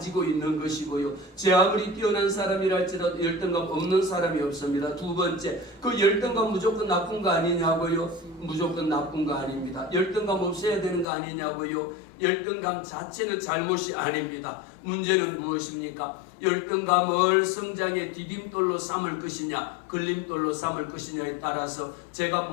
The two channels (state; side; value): drops out; right; at 11.1 s